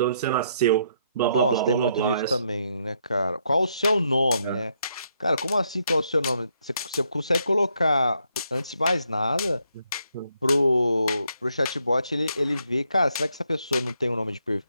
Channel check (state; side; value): inverted; both; correlation -0.75